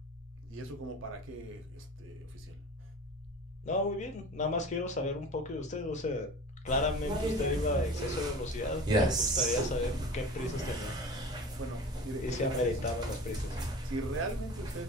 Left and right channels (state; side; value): normal; both; correlation 0.37